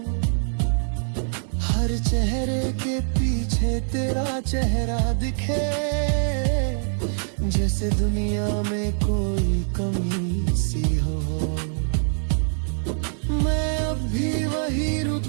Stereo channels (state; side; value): silent; left; digital silence